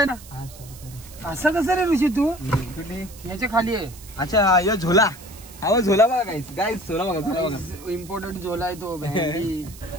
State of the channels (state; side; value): noise; right; hiss, 19 dB below the sound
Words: ना. असं कसं रे ऋषी तू? याच्या खाली आहे. अच्छा यो झोला. हा झोला बघा गाईस झोला बघा. इम्पॉर्टंट झोला आहे तो.